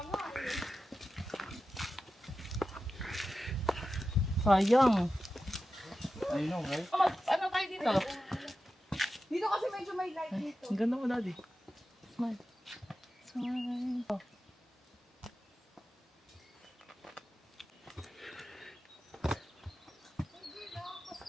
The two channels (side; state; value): both; normal; correlation 0.92